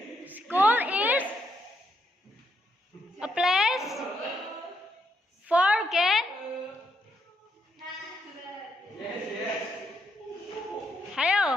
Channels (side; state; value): both; normal; correlation 0.77